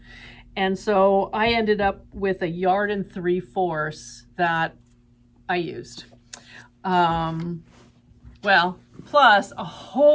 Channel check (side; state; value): both; identical; correlation 1.00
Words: And so I ended up with a yard and 3/4 that I used. Well, plus a